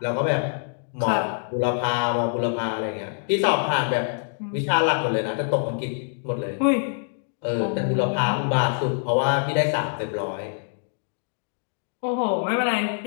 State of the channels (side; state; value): right; silent; digital silence